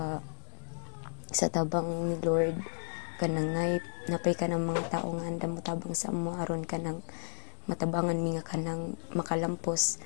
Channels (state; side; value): silent; right; 56 dB below the other